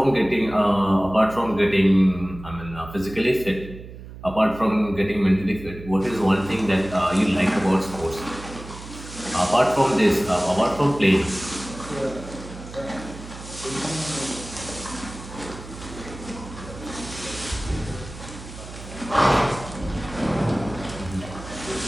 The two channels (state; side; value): noise; right; hum, 14 dB below the sound